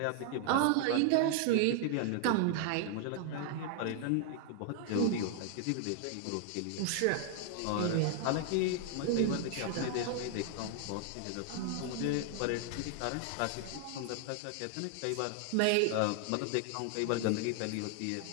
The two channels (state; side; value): different; both; correlation 0.00